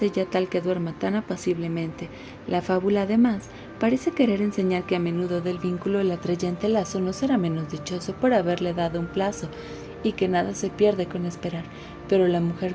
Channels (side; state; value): both; identical; correlation 1.00